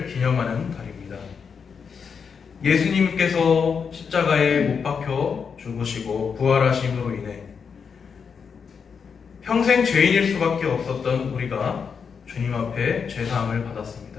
기념하는 달입니다. 예수님께서 십자가에 못 박혀 죽으시고 부활하심으로 인해 평생 죄인일 수밖에 없었던 우리가 주님 앞에 죄사함을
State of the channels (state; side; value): quieter; right; 6.2 dB